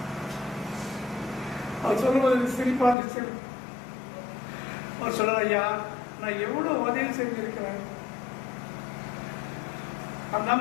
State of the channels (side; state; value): right; drops out; at 3.0 s